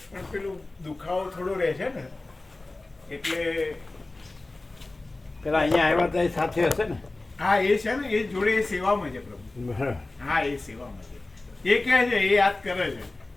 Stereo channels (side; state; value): right; quieter; 3.1 dB